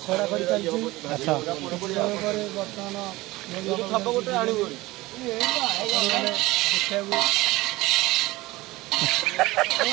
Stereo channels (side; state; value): left; quieter; 19.7 dB